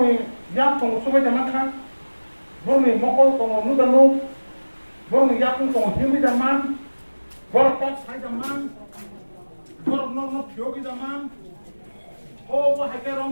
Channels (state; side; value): inverted; both; correlation -1.00